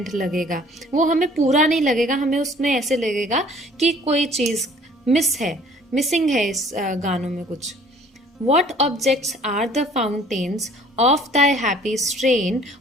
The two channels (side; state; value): both; normal; correlation 0.54